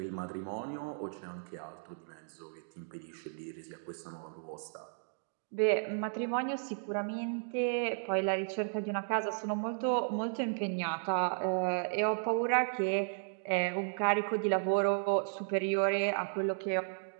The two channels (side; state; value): left; silent; digital silence